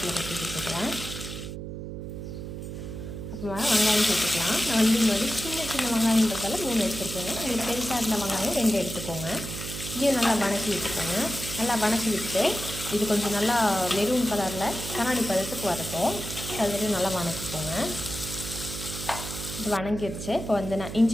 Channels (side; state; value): right; noise; hum, 8 dB below the sound